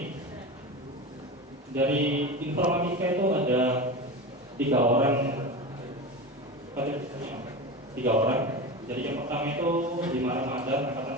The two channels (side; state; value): both; normal; correlation 0.26